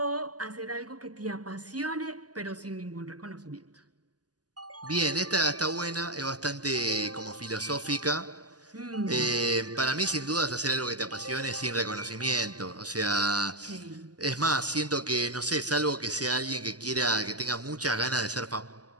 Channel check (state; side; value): late; left; 0.68 ms